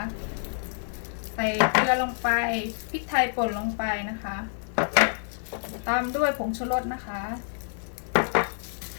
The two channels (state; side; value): silent; right; digital silence